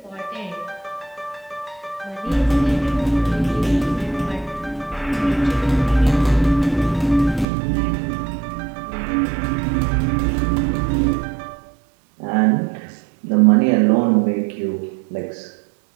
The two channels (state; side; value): drops out; left; at 7.5 s